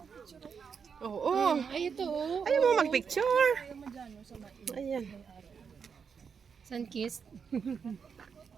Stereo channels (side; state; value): left; quieter; 6.3 dB